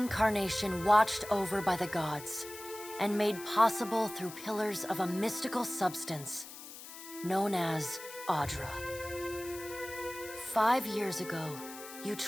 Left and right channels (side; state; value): left; noise; hiss, 13 dB below the sound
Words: watched over by the gods, and made possible through pillars of a mystical substance known as Audra. 5 years ago, you